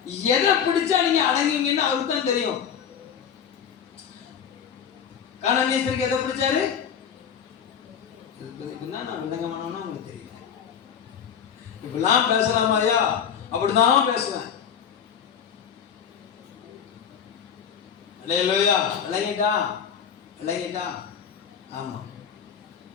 எதை பிடிச்சா நீங்க அடங்குவீங்கன்னு அவருக்கு தான் தெரியும். கானானியருக்கு எதை பிடிச்சாரு? நான் விளங்கமானோன்னா உங்களுக்கு தெரியல. இப்பெல்லாம் பேசலாமா ஐயா? அப்படிதான் பேசுவேன். அல்லேலூயா. விளங்கிட்டா? ஆமா,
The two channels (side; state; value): right; quieter; 7.9 dB